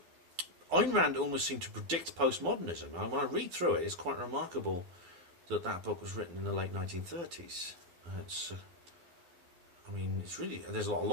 Rand almost seemed to predict postmodernism. When I read through it, it's quite remarkable that book was written in the late 1930s. I mean, it's really, there's a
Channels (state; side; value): late; left; 11 ms